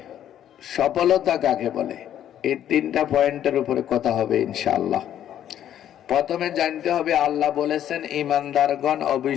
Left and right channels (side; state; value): right; quieter; 10.8 dB